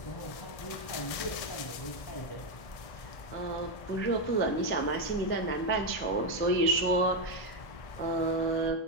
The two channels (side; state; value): right; late; 1.6 ms